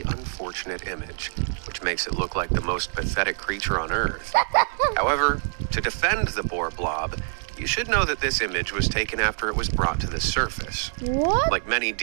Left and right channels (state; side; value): silent; left; 62 dB below the other